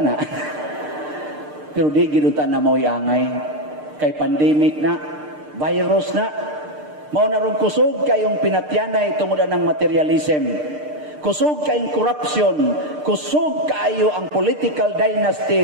Pero di ginutan na mo'y angay. Kay pandemic na, virus na. Mao na ron kusog kayong pinatyanay tungod ng materialism. Kusog kayong corruption. Kusog kayo ang political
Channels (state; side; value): late; left; 6.7 ms